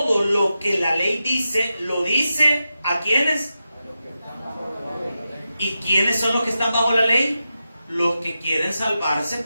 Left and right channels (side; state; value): both; inverted; correlation -0.90